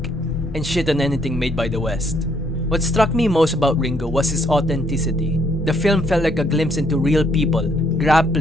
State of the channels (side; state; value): both; normal; correlation 0.69